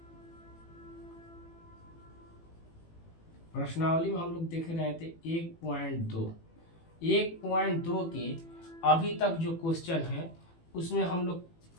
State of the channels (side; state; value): right; late; 18 ms